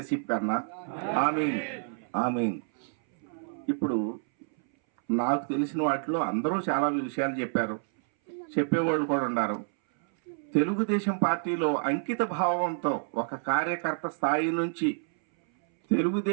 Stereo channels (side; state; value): left; silent; 59 dB below the other